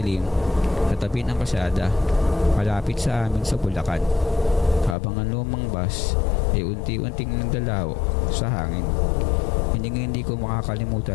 sa tabi ng kalsada, malapit sa amin sa Bulacan, habang ang lumang bus ay unti-unting nagdalaw sa hangin. Hindi ko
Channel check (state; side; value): drops out; right; at 5.0 s